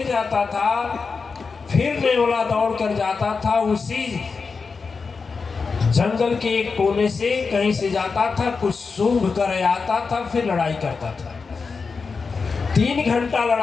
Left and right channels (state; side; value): quieter; right; 4.9 dB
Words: जाता था, फिर नेवला दौड़ कर जाता था, उसी जंगल के एक कोने से कहीं से जाता था, कुछ सूंघ कर आता था, फिर लड़ाई करता था। 3 घंटा